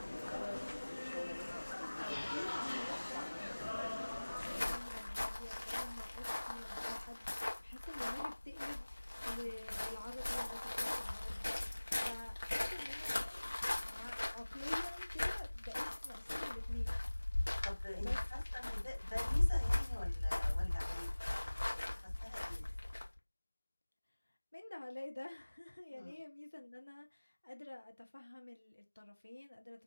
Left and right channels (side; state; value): both; inverted; correlation -1.00